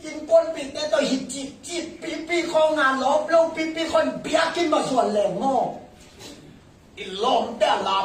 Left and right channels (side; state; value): both; identical; correlation 1.00